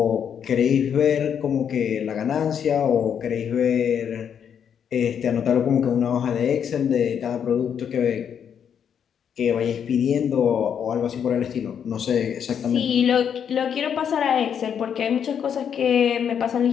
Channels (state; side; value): quieter; right; 8.1 dB